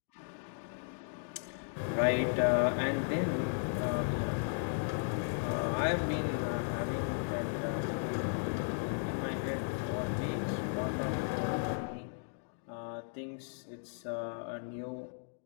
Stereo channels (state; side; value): silent; right; digital silence